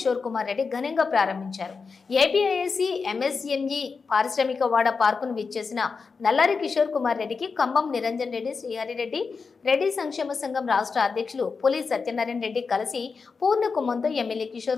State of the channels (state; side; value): quieter; right; 4.9 dB